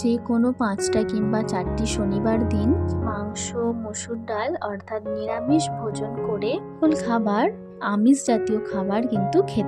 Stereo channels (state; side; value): identical; both; correlation 1.00